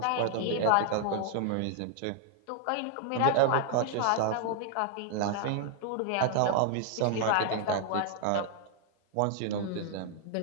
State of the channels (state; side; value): different; both; correlation 0.00